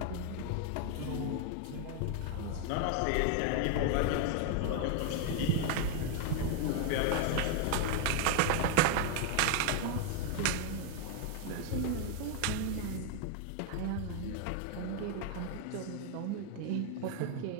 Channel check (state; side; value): different; both; correlation 0.01